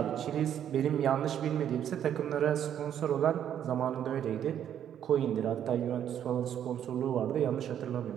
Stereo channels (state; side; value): quieter; left; 9.8 dB